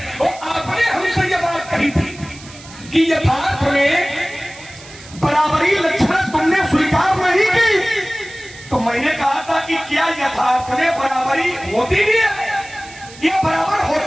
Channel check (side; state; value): right; noise; hiss, 19 dB below the sound